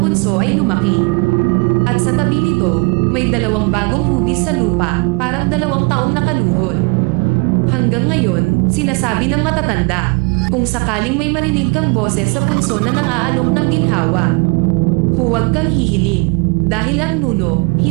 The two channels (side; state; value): left; quieter; 28.3 dB